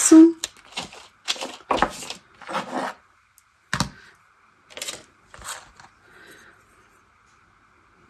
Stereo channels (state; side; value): identical; both; correlation 1.00